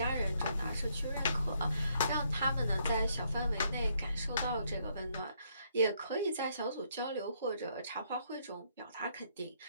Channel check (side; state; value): both; inverted; correlation -0.72